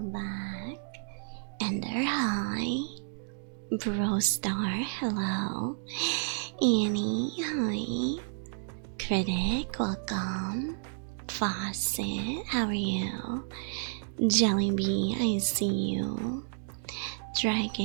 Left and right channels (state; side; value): silent; left; digital silence